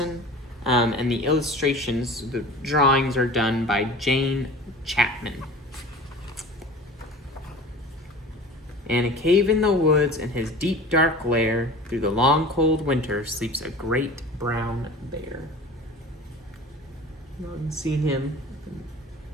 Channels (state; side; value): normal; both; correlation 0.39